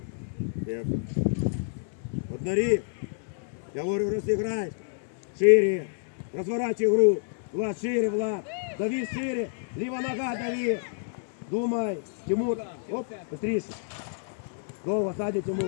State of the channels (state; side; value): silent; right; digital silence